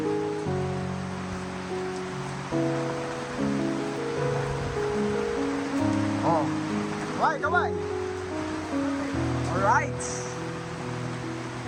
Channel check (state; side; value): identical; both; correlation 1.00